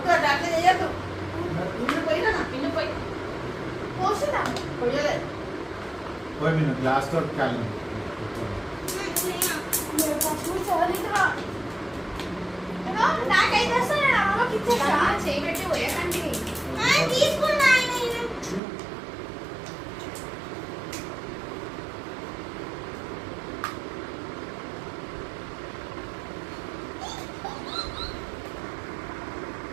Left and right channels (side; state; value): left; drops out; at 18.6 s